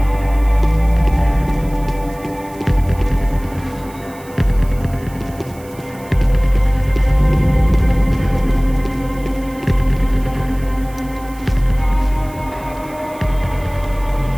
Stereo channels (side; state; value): right; noise; hiss, 23 dB below the sound